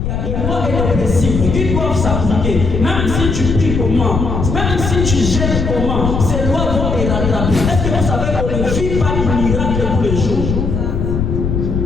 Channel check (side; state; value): left; noise; rumble, 2 dB below the sound